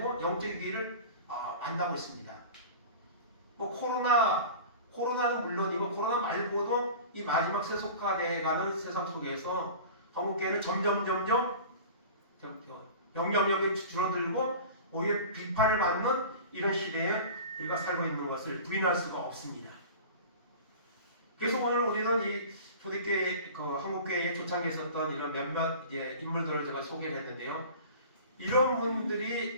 영적 위기를 만나고 있습니다. 뭐 코로나는 물론이고 코로나 말고도 이 마지막 세속화되어가는 세상 속에서 한국교회는 점점 영향력이 줄어들고 오히려 비판을 받는 이런 시대에 우리가 살고 있는 것을 부인할 수가 없습니다. 그래서 오늘 우리는 이 초대교회, 한국교회의 초창기에 있었던 이런 몇몇 인물들을 제가 소개를 했는데요. 이런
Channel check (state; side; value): inverted; both; correlation -0.37